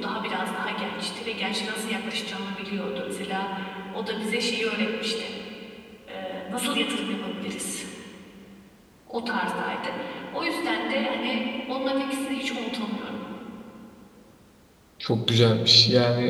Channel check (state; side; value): identical; both; correlation 1.00